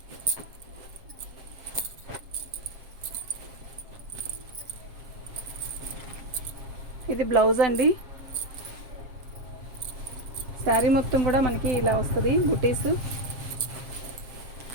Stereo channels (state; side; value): late; left; 7.4 ms